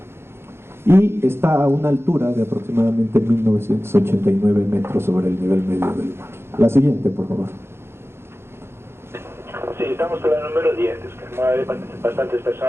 y está a una altura de aproximadamente 1989 metros sobre el nivel medio del mar. La siguiente, por favor. Sí, estamos en la número 10, es que hay bastantes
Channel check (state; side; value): late; left; 0.12 ms